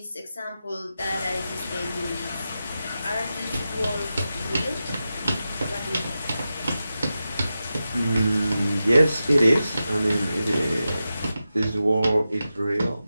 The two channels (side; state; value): both; inverted; correlation -0.91